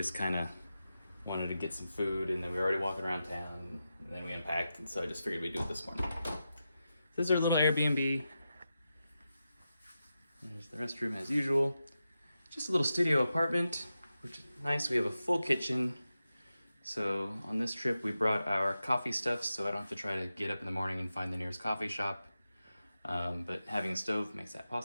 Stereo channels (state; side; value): inverted; both; correlation -0.90